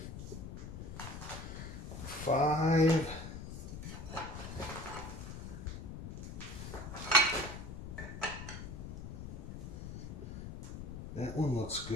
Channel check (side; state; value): left; noise; rumble, 8 dB below the sound